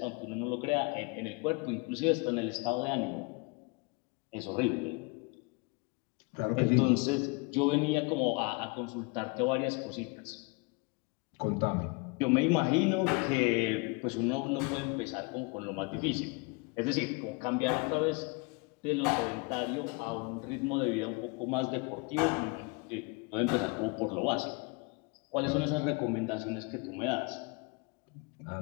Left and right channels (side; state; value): right; quieter; 29.9 dB